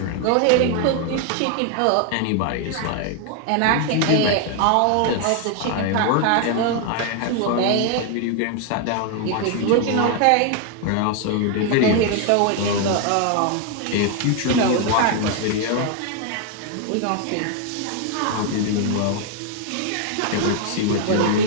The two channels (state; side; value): different; both; correlation 0.01